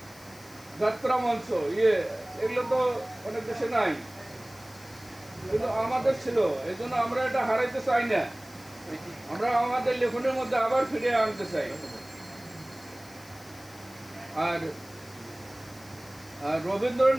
যাত্রা মঞ্চ, এগুলো তো অনেক দেশে নাই, কিন্তু আমাদের ছিল। এই জন্য আমরা এটা হারাইতে চাই না, আমরা আমাদের লেখনের মধ্যে আবার ফিরে আনতে চাই। আর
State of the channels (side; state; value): left; noise; hiss, 21 dB below the sound